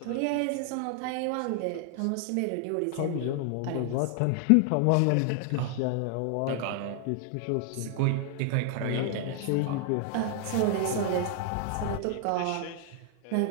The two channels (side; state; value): both; different; correlation 0.00